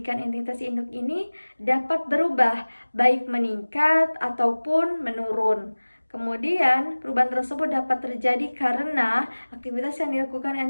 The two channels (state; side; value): inverted; both; correlation -1.00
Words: entitas induk ini dapat berubah, baik meningkat ataupun menurun. Kemudian, perubahan tersebut dapat terjadi karena aktivitas yang dilakukan